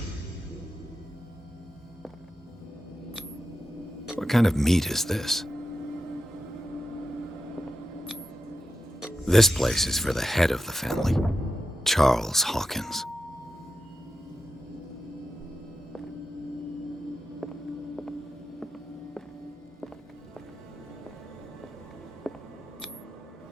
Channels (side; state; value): both; normal; correlation 0.90